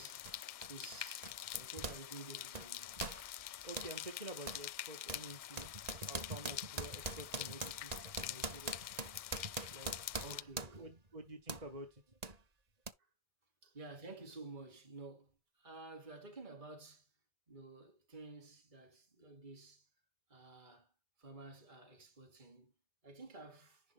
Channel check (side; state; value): left; late; 1.6 ms